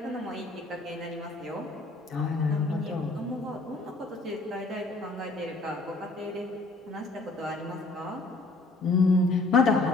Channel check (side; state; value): right; quieter; 3.2 dB